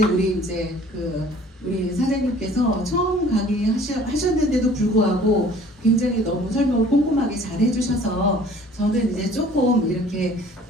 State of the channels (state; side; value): normal; both; correlation 0.51